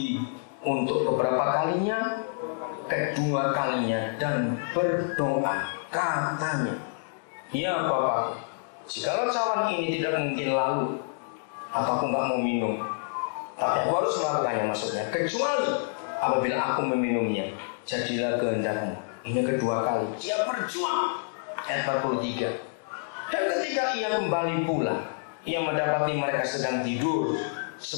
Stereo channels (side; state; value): right; silent; digital silence